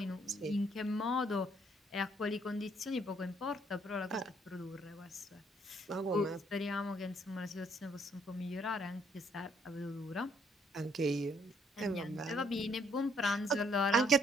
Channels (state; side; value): normal; both; correlation 0.68